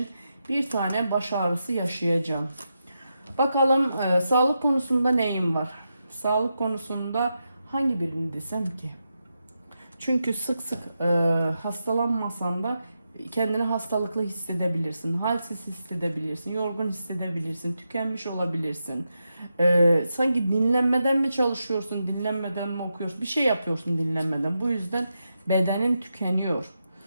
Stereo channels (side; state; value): both; inverted; correlation -0.87